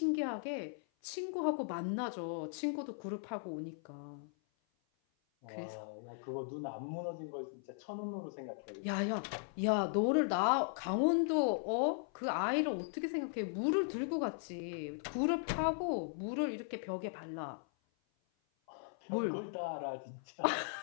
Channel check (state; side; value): silent; right; 52 dB below the other